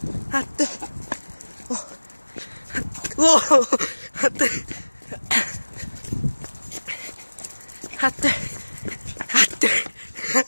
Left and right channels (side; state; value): both; inverted; correlation -1.00